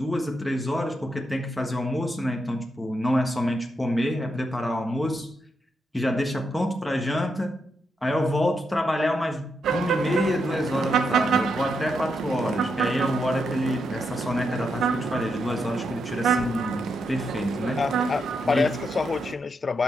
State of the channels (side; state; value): both; normal; correlation 0.82